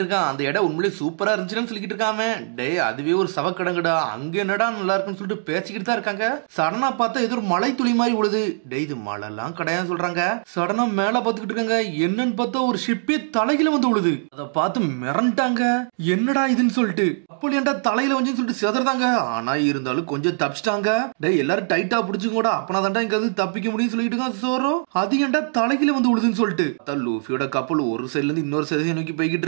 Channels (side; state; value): left; silent; digital silence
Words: இருக்கான், அந்த இடம் உண்மையிலே சூப்பரா இருந்துச்சுன்னு சொல்லிட்டு இருக்காம. டே அதுவே ஒரு சவக்கடங்கடா, அங்க என்னடா நல்லா இருக்குன்னு சொல்லிட்டு பேசிக்கிட்டு தான் இருக்காங்க. சடனா பார்த்தா ஏதோ ஒரு மலை துளி மாதிரி உழுது. டே இது மழைலாம் கிடையாது சொல்றாங்க. சடனா மேல பாத்துக்கிட்டு இருக்காங்க, என்னன்னு பார்த்தா ஒரு ஷிப்பே தலையில வந்து உழுது. அதை பார்த்து மிரண்டாங்க, என்னடா இதுன்னு சொல்லிட்டு. அப்படி ஏன்டா தலையில வந்து சொல்லிட்டு செதறாங்க. ஆனா இருந்தாலும் கொஞ்சம் தப்பிச்சிட்டாங்க. டே எல்லாரும் டைட்டா பிடிச்சுக்கூட, அப்பனா தாண்டா இங்க வந்து தப்பிக்க முடியும்னு சொல்லிட்டு இருக்கான் சோரோ. அது ஏன்டா தலையில வந்து உழுதுன்னு சொல்லிட்டு லூஃபியோட கப்பல் ஒரு சைடுல இருந்து இன்னொரு சைடு நோக்கி போய்கிட்டு